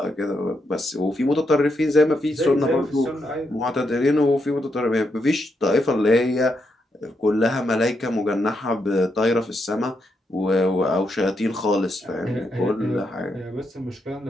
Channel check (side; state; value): both; normal; correlation 0.81